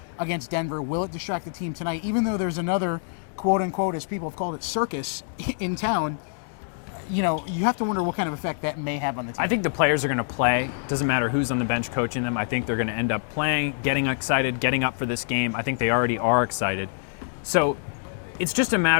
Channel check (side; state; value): right; silent; 61 dB below the other